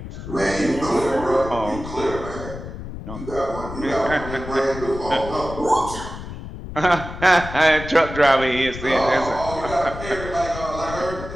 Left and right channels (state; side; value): noise; left; rumble, 10 dB below the sound